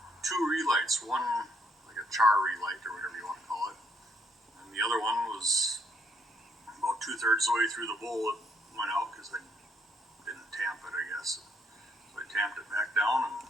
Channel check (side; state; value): both; normal; correlation 0.70